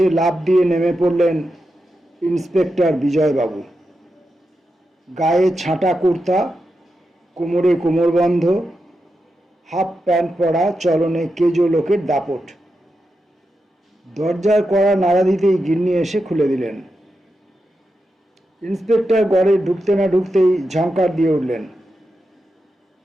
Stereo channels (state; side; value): normal; both; correlation 0.88